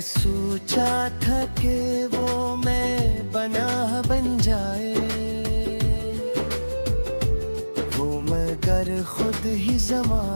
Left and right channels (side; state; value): both; inverted; correlation -1.00